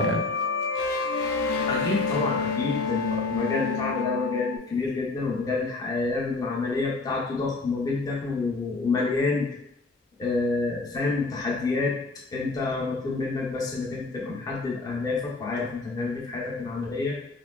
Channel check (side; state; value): right; quieter; 3.5 dB